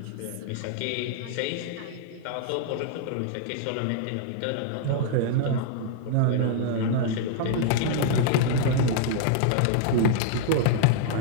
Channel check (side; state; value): both; different; correlation -0.01